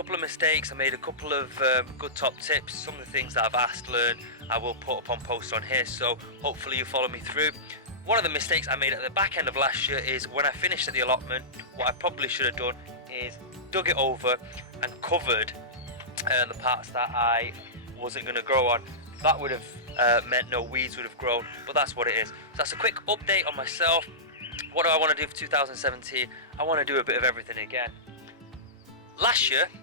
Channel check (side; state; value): both; normal; correlation -0.18